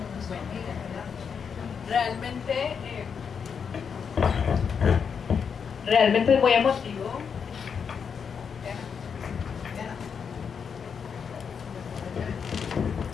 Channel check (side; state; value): right; quieter; 6.6 dB